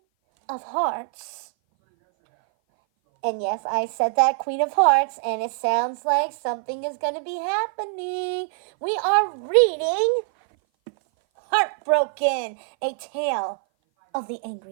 of Hearts. And yes, I said that, Queen of Hearts, and it sounds like something is going to be happening. We are reading Heartbroken, a tale of the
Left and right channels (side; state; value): left; silent; 58 dB below the other